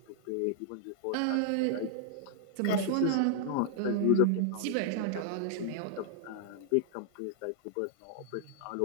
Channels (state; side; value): different; both; correlation 0.00